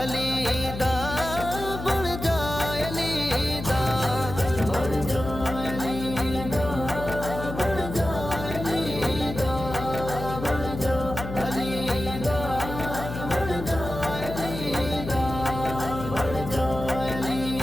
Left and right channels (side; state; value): left; noise; hum, 8 dB below the sound